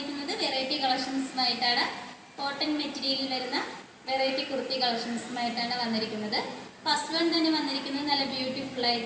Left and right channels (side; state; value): both; identical; correlation 1.00